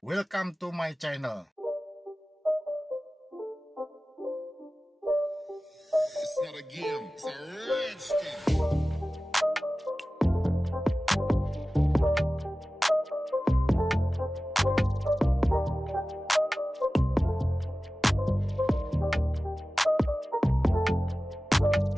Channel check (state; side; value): normal; both; correlation 0.96